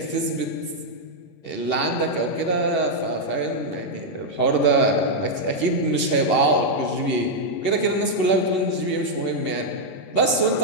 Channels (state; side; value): late; right; 11 ms